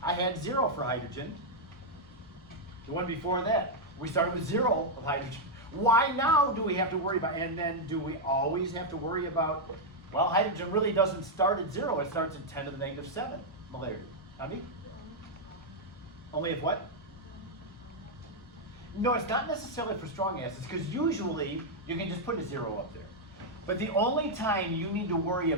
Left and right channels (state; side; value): normal; both; correlation -0.02